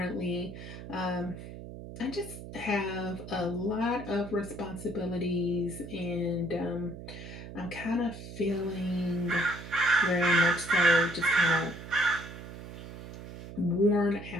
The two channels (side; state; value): right; noise; hum, 12 dB below the sound